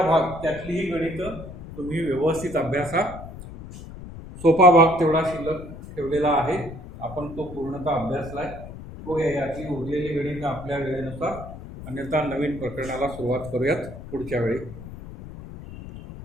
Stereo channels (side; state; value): left; noise; rumble, 13 dB below the sound